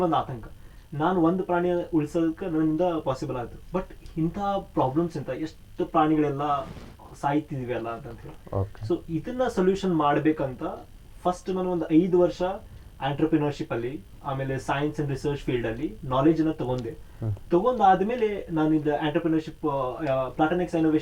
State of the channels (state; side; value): identical; both; correlation 1.00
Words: ಒಂದು ಆತಂಕ, ನಾನು ಒಂದು ಪ್ರಾಣಿಯ ಉಳಿಸೋದಕ್ಕೆ ನನ್ನಿಂದ ಪಾಸಿಬಲ್ ಆಯಿತು. ಬಟ್ ಇಂಥ ಪ್ರಾಬ್ಲಮ್ಸ್ ಎಷ್ಟು ಪ್ರಾಣಿಗಳೆಲ್ಲ ಸಾಯ್ತಿದ್ವಿ ಅಲ್ಲ ಅಂತ ಹೇಳಿ. ಸೊ ಇದನ್ನ ಸೊಲ್ಯೂಷನ್ ಮಾಡ್ಬೇಕಂತ ಫಸ್ಟ್ ನಾನು ಒಂದು 5 ವರ್ಷ ಆಂಟ್ರಪ್ರಿನರ್ಶಿಪ್ ಅಲ್ಲಿ, ಆಮೇಲೆ ಸೈನ್ಸ್ ಅಂಡ್ ರಿಸರ್ಚ್ ಫೀಲ್ಡ್ ಅಲ್ಲಿ ನಾಲೆಜ್ ಅನ್ನ ತಗೊಂಡಾದ್ಮೇಲೆ ನಾನು ಇದು ಆಂಟ್ರಪ್ರಿನರ್ಶಿಪ್ ಪ್ಲಾಟೋನಿಕ್ಸ್